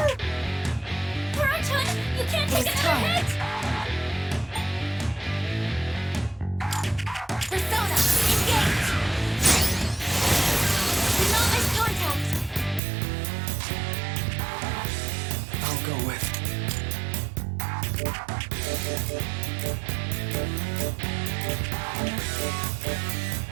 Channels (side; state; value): left; drops out; at 12.8 s